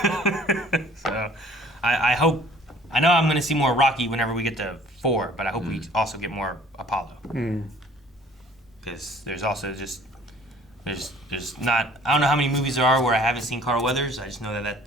So I hope, I know I'm going to see more Rocky whenever we get to 4, but I hope we also get more Apollo. Because there's also there's not, I don't know how many movies there are where I haven't seen Carl Weathers. I just know that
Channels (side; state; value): both; normal; correlation 0.53